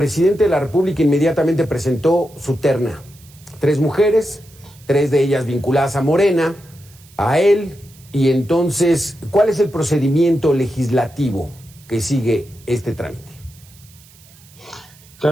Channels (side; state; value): right; noise; hiss, 25 dB below the sound